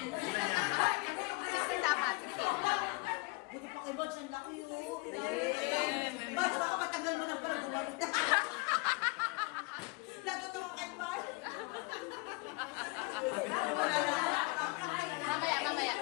Sister, dapat. Sige. Buti pa kay Bods, ang laki yun. Bods, baka matagal mo na pala gumalit. Natutuwa kay Bods. Mamaya.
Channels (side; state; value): right; quieter; 26.4 dB